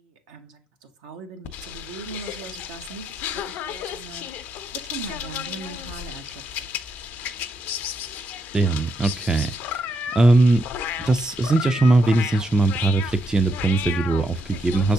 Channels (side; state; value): both; normal; correlation 0.79